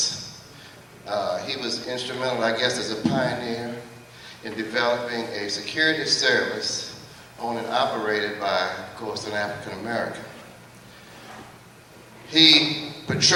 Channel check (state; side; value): identical; both; correlation 1.00